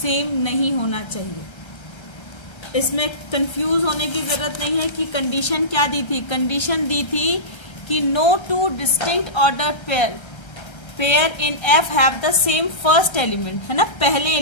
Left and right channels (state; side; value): late; right; 1.3 ms